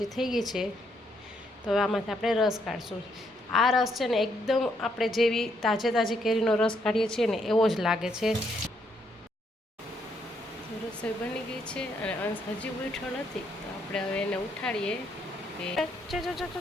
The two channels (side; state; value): both; normal; correlation 0.74